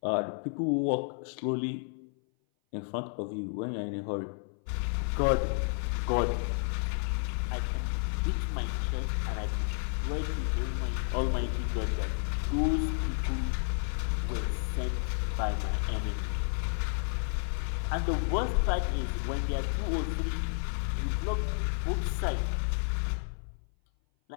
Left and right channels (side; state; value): right; silent; 57 dB below the other